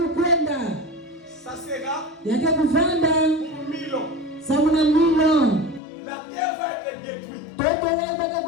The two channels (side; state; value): right; drops out; at 5.8 s